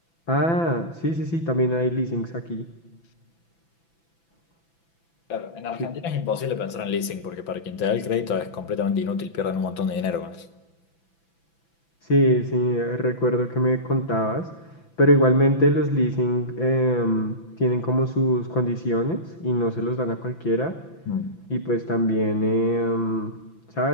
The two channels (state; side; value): late; right; 6.0 ms